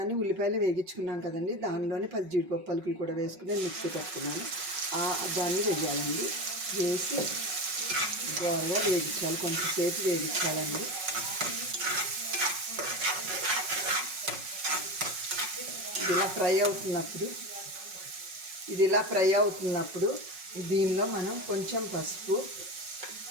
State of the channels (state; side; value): late; left; 5.4 ms